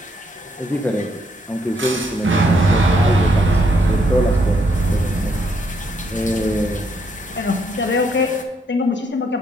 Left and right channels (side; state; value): both; normal; correlation 0.73